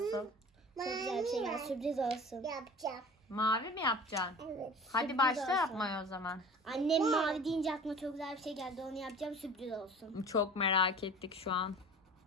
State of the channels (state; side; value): normal; both; correlation 0.41